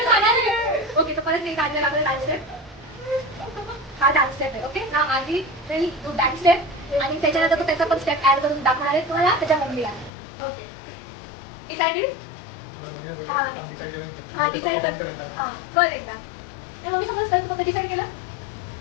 ओके, तर परत मी काढलेला आपला डान्स स्टेप. हा डान्स स्टेप आहे. ओके ना, आधी तू डान्स स्टेप आणि त्याच्यानंतर तो त्याचा पण स्टेप ऍड करून दाखवणार आहे तुम्हाला त्याच्या मम्मीला. Okay, decided. हा डिसाईड कर. हा कर एकदा. त्या मम्मी समज कर, तू डिसाईड केलं.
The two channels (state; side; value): drops out; right; at 10.1 s